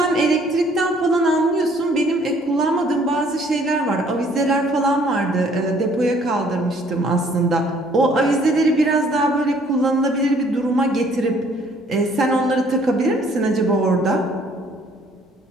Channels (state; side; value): normal; both; correlation 0.61